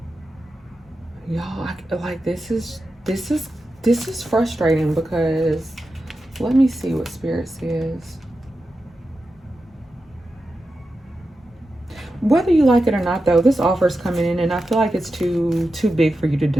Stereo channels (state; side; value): normal; both; correlation 0.90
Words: Y'all, like this is frustrating because let me see what spirit says. Whether you like it or not, though, this offer is coming in, and I feel like it's too big for you to